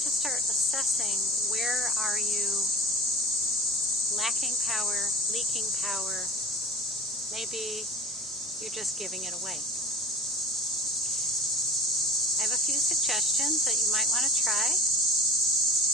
start assessing where are you lacking power, leaking power. Maybe you're just giving it away. I have a few suggestions that you might want to try.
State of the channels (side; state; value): both; normal; correlation 0.37